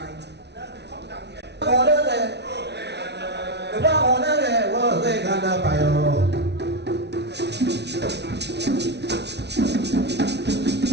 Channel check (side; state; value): left; late; 0.50 ms